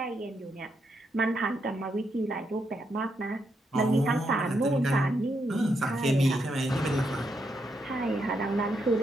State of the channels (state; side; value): normal; both; correlation 0.80